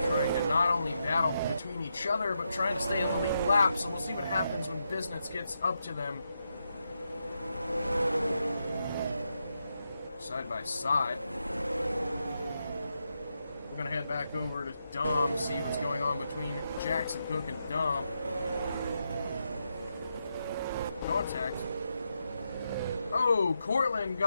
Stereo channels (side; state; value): both; inverted; correlation -0.84